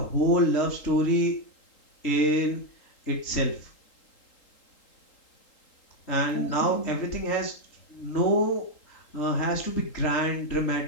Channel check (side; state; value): right; late; 3.8 ms